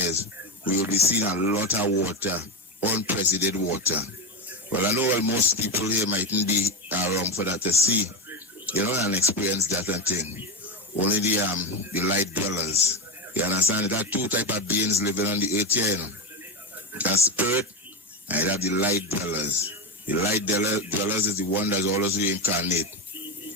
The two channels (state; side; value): normal; both; correlation 0.14